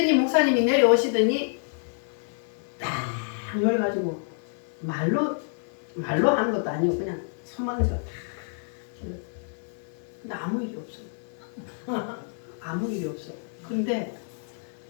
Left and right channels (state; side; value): silent; right; digital silence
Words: 목사님이 내려오시더니 딱 열어가지고 말로 하는 것도 아니고 그냥 손만 얹어 딱 근데 아무 일이 없어. 아무 일이 없어. 근데